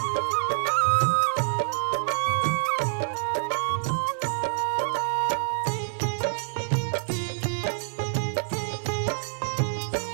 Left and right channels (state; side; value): silent; left; 60 dB below the other